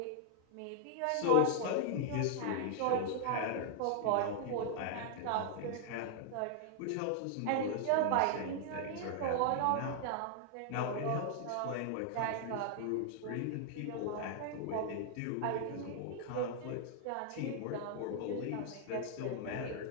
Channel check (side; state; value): both; different; correlation -0.01